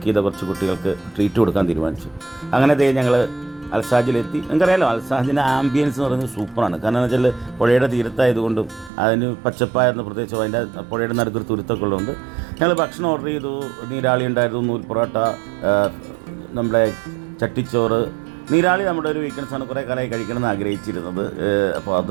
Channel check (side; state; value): left; drops out; at 8.9 s